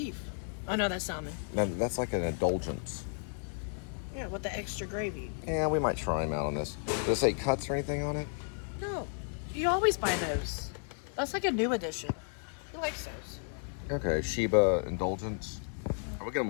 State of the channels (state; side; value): silent; right; 56 dB below the other